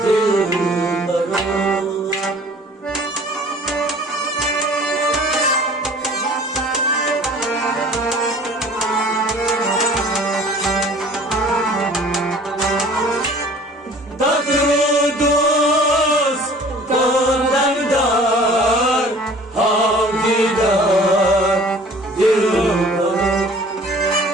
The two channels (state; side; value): normal; both; correlation 0.49